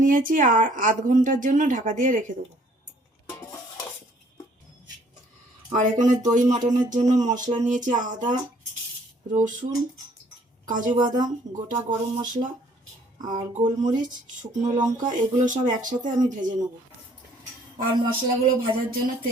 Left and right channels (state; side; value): normal; both; correlation 0.60